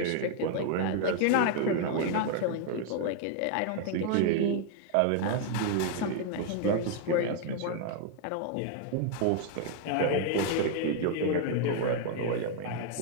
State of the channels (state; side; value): different; both; correlation 0.00